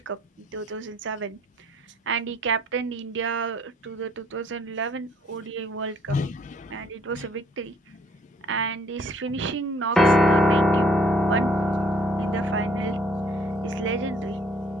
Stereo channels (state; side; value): normal; both; correlation 0.62